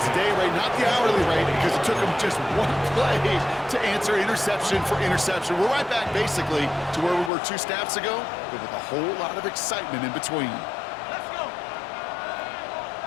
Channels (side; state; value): right; drops out; at 7.3 s